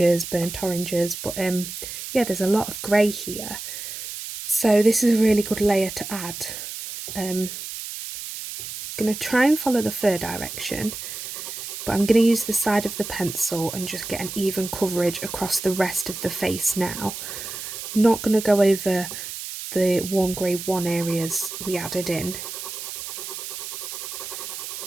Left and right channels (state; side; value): noise; right; hiss, 8 dB below the sound